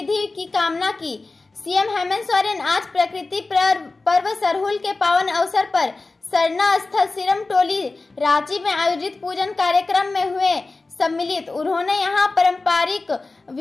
की कामना की। सीएम हेमंत सोरेन आज प्रकृति पर्व सरहुल के पावन अवसर पर सरना स्थल सिरम टोली रांची में आयोजित पूजन कार्यक्रम में हुए सम्मिलित। उन्होंने यहां पारंपरिक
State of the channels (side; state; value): right; quieter; 3.5 dB